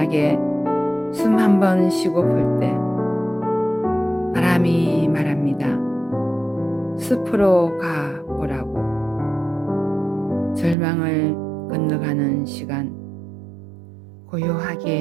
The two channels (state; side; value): drops out; left; at 10.8 s